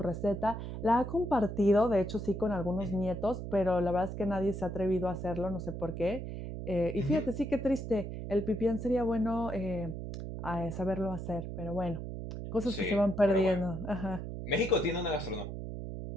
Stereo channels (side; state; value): right; noise; hum, 7 dB below the sound